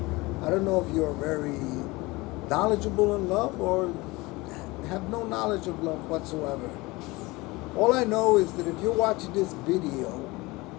I don't know if you're very knowledgeable in love or have no knowledge of love whatsoever. All I know is that if you're watching this video,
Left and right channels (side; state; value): right; quieter; 22.4 dB